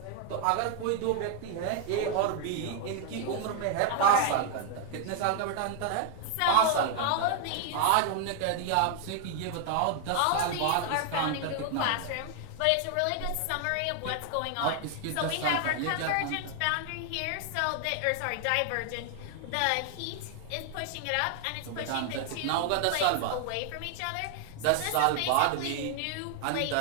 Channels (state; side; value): different; both; correlation 0.00